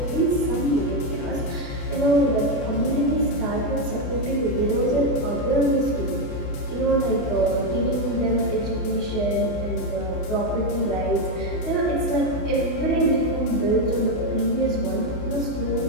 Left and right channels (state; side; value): late; right; 28 ms